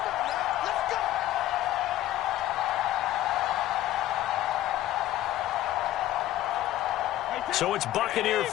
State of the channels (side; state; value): right; quieter; 14.1 dB